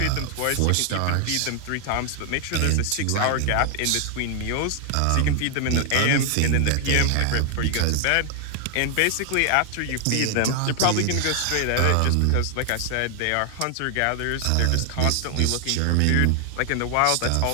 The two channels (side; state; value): both; different; correlation 0.00